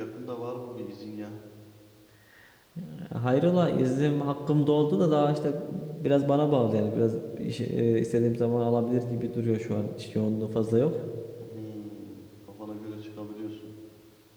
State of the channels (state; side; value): identical; both; correlation 1.00